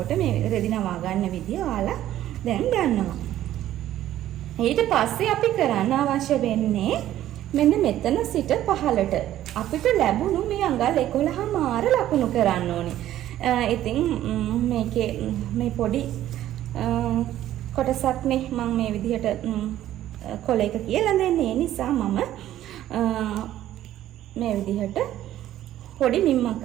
මේ රෙදි නවා ගන්න විදිය ඔයාලා දැන් ගන්නවා. ඊට පස්සේ අපි කරන්න අවශ්‍ය වෙන්නේ මෙන්න මෙතන සිට පහළට අපිට ලැබුණු මේ අඟල් 11 මාර ලකුණු කරන්න ඕනේ. ඉතින් මේකේ මේ පොඩි කොටසක් නේ මම මේ විදිහට කොලයක කියලා දෙන්නේ. ඒ නිසා මම මේ විදිහට පොඩි මිම්මක්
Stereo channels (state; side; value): quieter; left; 12.9 dB